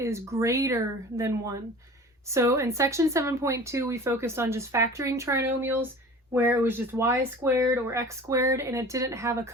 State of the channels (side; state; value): both; normal; correlation 0.41